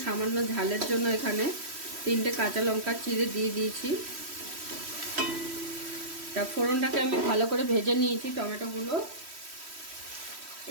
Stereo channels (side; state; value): left; late; 3.1 ms